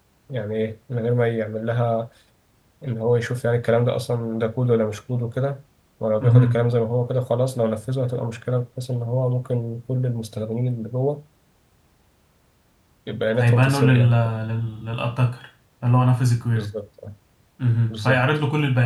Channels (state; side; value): identical; both; correlation 1.00